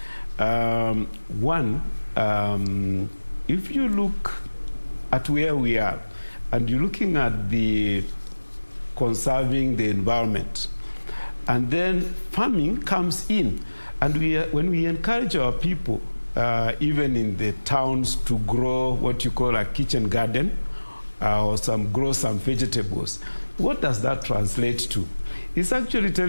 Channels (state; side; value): inverted; both; correlation -1.00